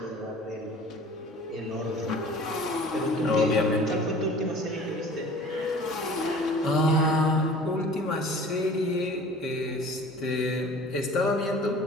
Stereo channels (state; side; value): normal; both; correlation 0.45